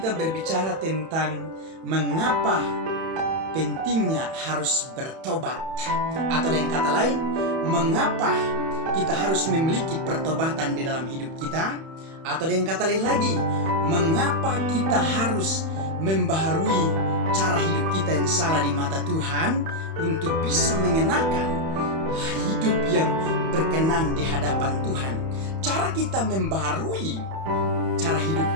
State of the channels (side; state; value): left; late; 31 ms